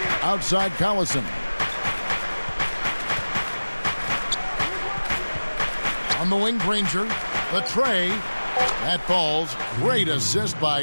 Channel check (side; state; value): both; inverted; correlation -1.00